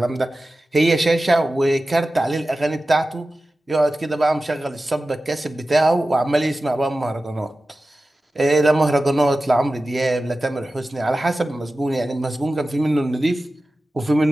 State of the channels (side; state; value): both; normal; correlation 0.95